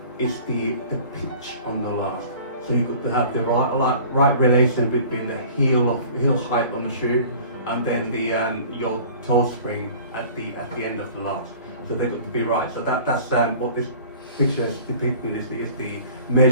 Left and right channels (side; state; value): both; inverted; correlation -0.46